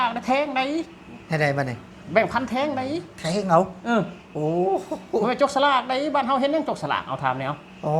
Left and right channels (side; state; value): both; identical; correlation 1.00